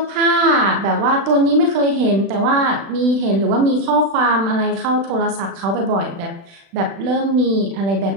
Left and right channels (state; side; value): late; left; 36 ms